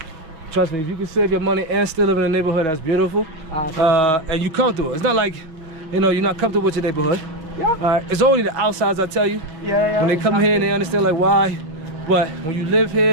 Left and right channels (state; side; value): late; left; 6.4 ms